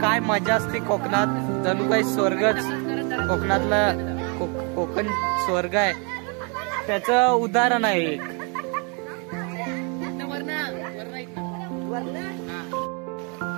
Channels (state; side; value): quieter; left; 34.9 dB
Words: काय मजा असते कोकणात, जणू काही स्वर्गच. कोकणातला कोकण स्वर्ग आहे, त्याचं उदाहरण आहे एक.